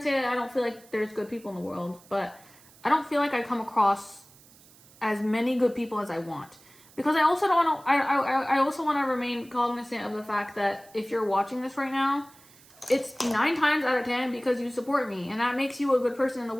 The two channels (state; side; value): noise; right; hiss, 25 dB below the sound